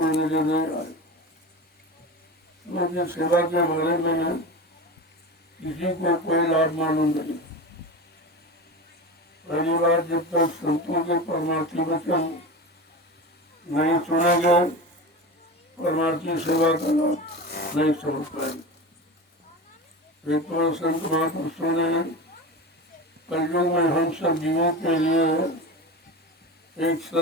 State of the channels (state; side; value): normal; both; correlation 0.27